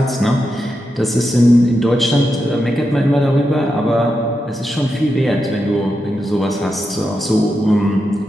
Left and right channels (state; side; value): normal; both; correlation 0.87